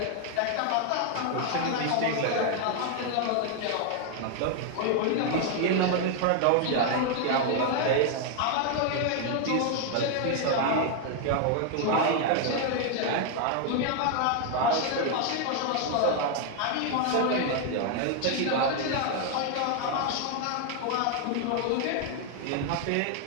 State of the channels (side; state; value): both; different; correlation 0.01